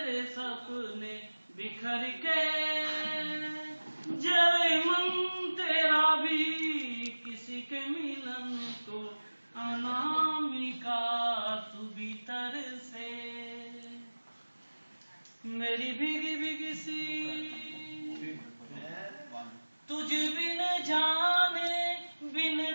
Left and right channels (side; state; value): both; inverted; correlation -1.00